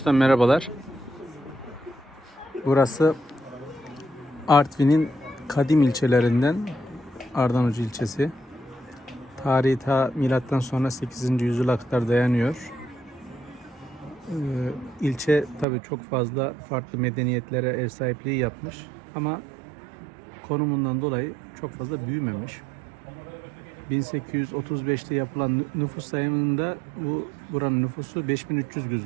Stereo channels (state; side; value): drops out; left; at 15.7 s